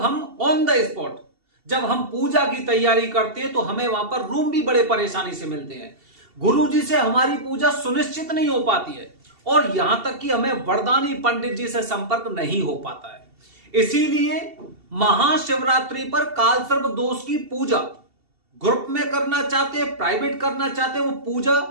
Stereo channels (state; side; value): late; left; 2.7 ms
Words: हम ऑन द स्पॉट जब हम पूजा की तैयारी करते हैं तो हमें वहां पर रूम भी बड़े परेशानी से मिलते हैं। गुरुजी से हमारी पूजा सुनिश्चित नहीं हो पाती है और यहां तक कि हमें वरदानी पंडित जी से संपर्क नहीं हो पाता है। इसीलिए महाशिवरात्रि पर कालसर्प दोष की पूजा ग्रुप में करना चाहते हैं, प्राइवेट करना चाहते हैं, वो पूजा